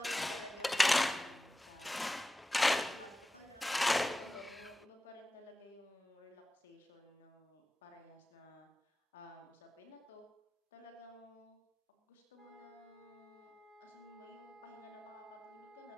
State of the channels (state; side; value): normal; both; correlation 0.95